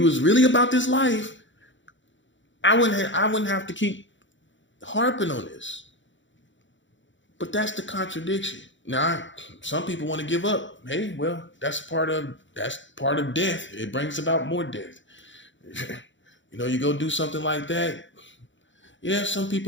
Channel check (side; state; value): right; late; 0.55 ms